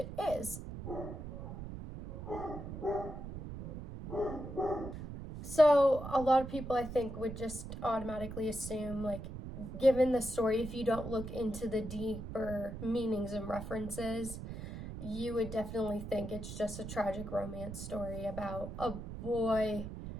is. So a lot of people, I think, would just automatically assume, like, given the story, if you don't look into the deeper meanings and references, you would definitely think it's just a tragic romance story about a boy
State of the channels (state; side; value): noise; right; rumble, 9 dB below the sound